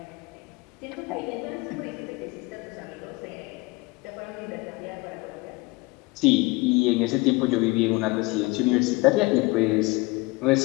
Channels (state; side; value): quieter; right; 23.6 dB